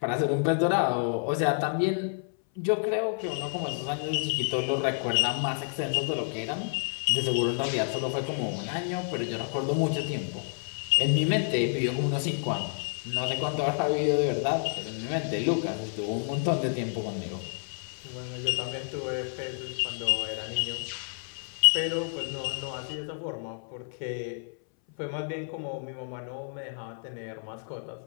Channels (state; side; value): silent; right; 58 dB below the other